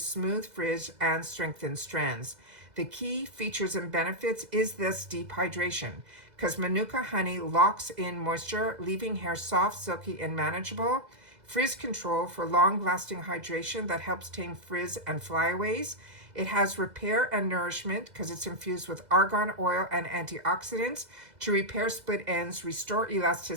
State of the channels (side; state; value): left; late; 2.0 ms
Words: frizz, and strengthen strands. The key features and benefits is this deep hydration, because Manuka honey locks in moisture, leaving hair soft, silky, and manageable. Frizz control for long-lasting hydration that helps tame frizz and flyaways. It has repair and nourishment because it's infused with argan oil and antioxidants to repair split ends, restore